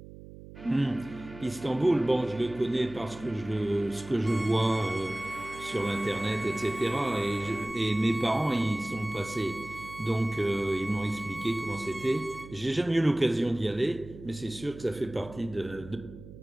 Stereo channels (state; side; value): noise; right; hum, 16 dB below the sound